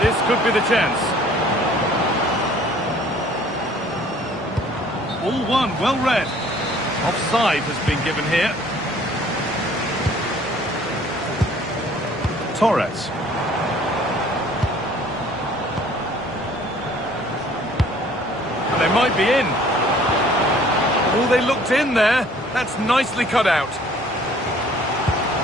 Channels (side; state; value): both; normal; correlation 0.55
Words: this could be the chance. All one, well read. Offside has been given here. Torres. And they might be in. Oh, they looked in there. That's nicely cut out.